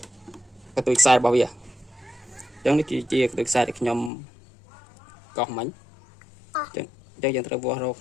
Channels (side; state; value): right; drops out; at 4.1 s